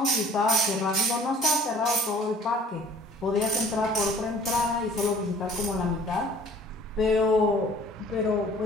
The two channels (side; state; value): both; normal; correlation 0.51